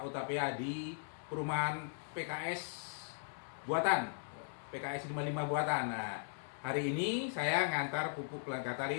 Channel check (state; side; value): silent; right; digital silence